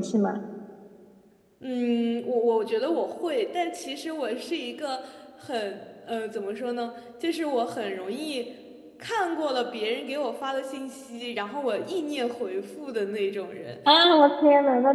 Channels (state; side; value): identical; both; correlation 1.00